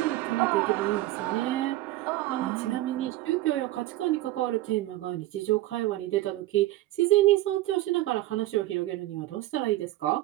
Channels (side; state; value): left; quieter; 16.5 dB